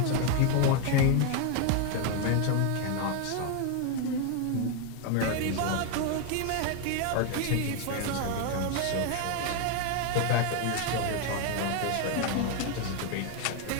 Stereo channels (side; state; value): both; different; correlation 0.01